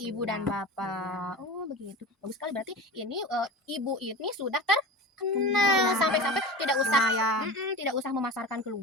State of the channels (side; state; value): both; normal; correlation 0.31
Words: dan bapak. Oh, begitu. Bagus sekali berarti ini ibu ini sudah terkenal sampai-sampai tidak usah Lumayan. tidak usah memasarkan